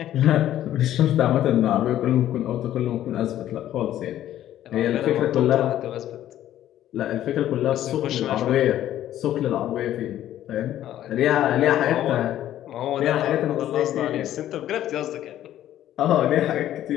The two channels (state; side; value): quieter; right; 12.4 dB